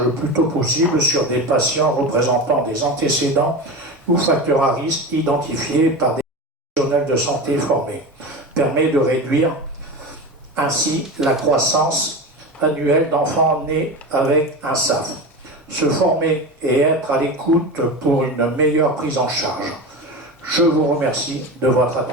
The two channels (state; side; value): normal; both; correlation 0.25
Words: le plus tôt possible sur des patients représentant des antécédents ou facteurs à risque identifiés par des professionnels de santé formés. Permet de réduire ainsi la croissance annuelle d'enfants nés avec un SAF. Se former et être à l'écoute pour une meilleure prise en charge. Je vous remercie de votre